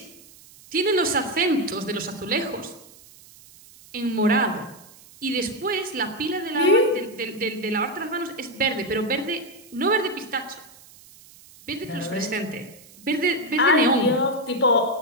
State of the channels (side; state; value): right; noise; hiss, 23 dB below the sound